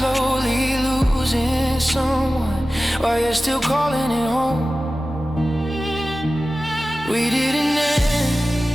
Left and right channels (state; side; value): normal; both; correlation 0.95